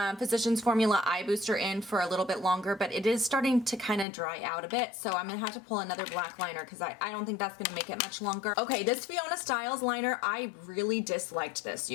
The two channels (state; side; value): drops out; right; at 4.0 s